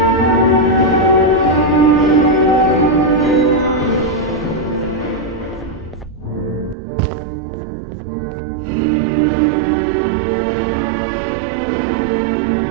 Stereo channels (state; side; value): drops out; left; at 6.8 s